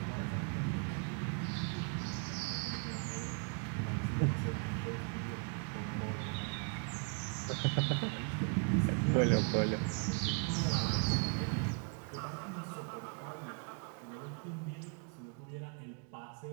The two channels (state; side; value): quieter; left; 37.0 dB